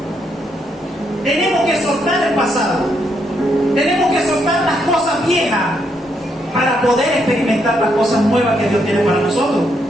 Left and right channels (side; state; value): both; normal; correlation 0.76